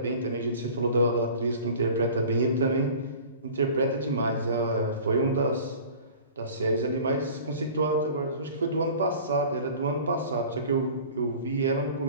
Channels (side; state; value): both; inverted; correlation -0.43